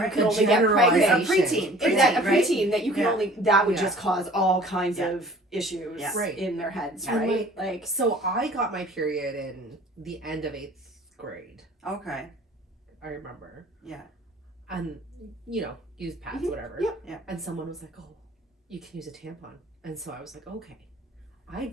can The only get A pregnant. preteen. Exactly, a right? preteen that you can Yeah. only that would Yeah. just cause all kinds Yeah. of issues Yeah. Right. in their heads, And right? Like So I got my period in the end of 8th grade. Okay. I remember. Yeah. And use pads, Mhm. whatever. Yeah. Yeah. And someone was like, "Oh, you can use a tampon." And so I was like, "Okay." I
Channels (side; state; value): both; normal; correlation 0.49